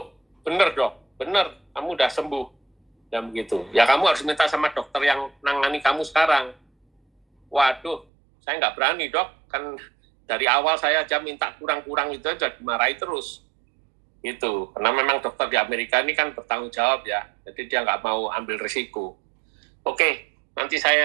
bener dok, bener, kamu udah sembuh. Dan begitu. Ya kamu harus minta sama dokter yang nangani kamu sekarang. Waduh, saya nggak berani dok, kan dari awal saya aja minta kurang-kurang itu aja dimarahi terus. Gitu, karena memang dokter di Amerika ini kan bertanggung jawab ya, jadi dia nggak mau ambil risiko. Oke, nanti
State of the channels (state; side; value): drops out; left; at 8.1 s